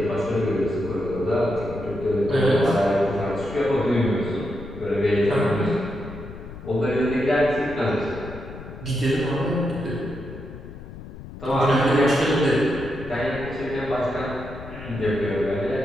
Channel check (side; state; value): left; noise; rumble, 13 dB below the sound